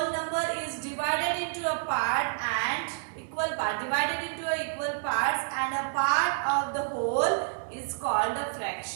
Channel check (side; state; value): left; silent; 58 dB below the other